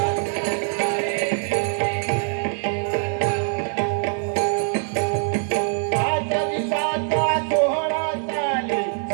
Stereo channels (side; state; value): left; silent; 56 dB below the other